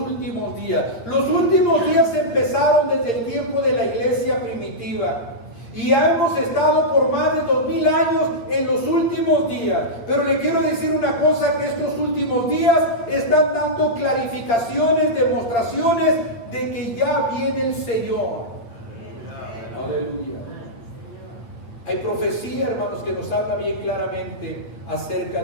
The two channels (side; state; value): right; late; 8.7 ms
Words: días. Los últimos días empezaron desde el tiempo de la iglesia primitiva. Y ya hemos estado por más de 2000 años en los últimos días. Pero le quiero decir una cosa, que estos últimos días están dando clarificaciones, demostraciones de que ya viene el Señor. Aleluya. Hay profecía, hermanos, que nos habla bien claramente acerca